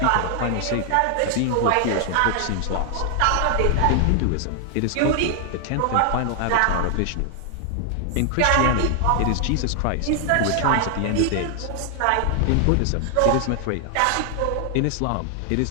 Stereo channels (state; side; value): different; both; correlation 0.00